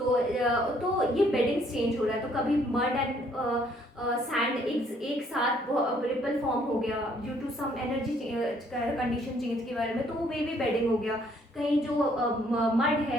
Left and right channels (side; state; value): both; normal; correlation 0.65